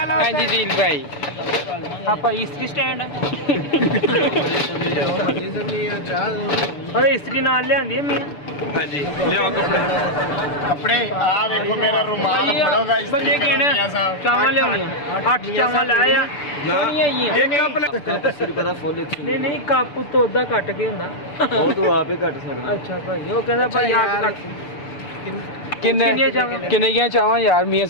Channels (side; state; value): right; late; 6.8 ms